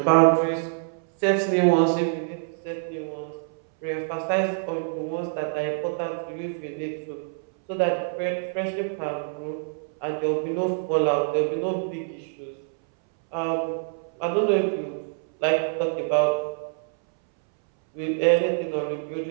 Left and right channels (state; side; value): silent; left; 61 dB below the other